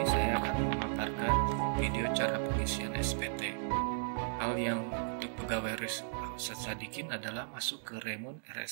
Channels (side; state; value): left; silent; digital silence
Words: saya akan memaparkan video cara pengisian SPT. Hal yang untuk pegawai Ustadz Sadikin adalah masuk ke Remun